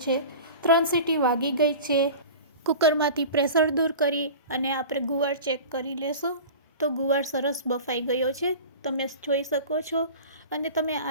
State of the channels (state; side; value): inverted; both; correlation -0.36